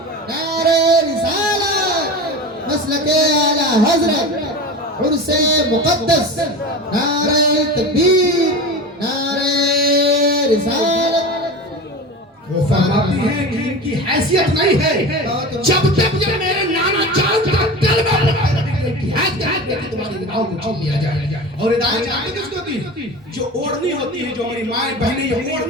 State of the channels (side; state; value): both; normal; correlation 0.30